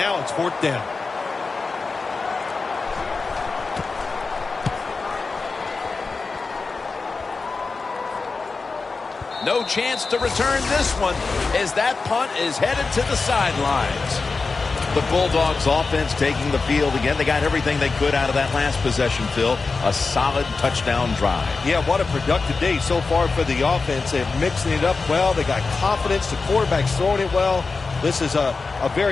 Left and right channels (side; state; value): right; quieter; 4.2 dB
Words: it's 4th down. No chance to return this one as that punt is headed to the sidelines. The Bulldogs offense taking the field again. They got everything they could out of that last possession, Phil. A solid touchdown drive. Yeah, what a productive day so far for the offense. They're mixing it up well. They got confidence. The quarterback's throwing it well. This is a